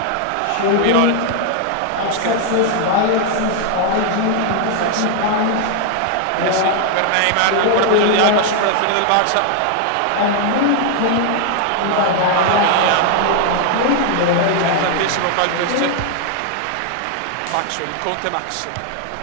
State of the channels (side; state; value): both; different; correlation 0.00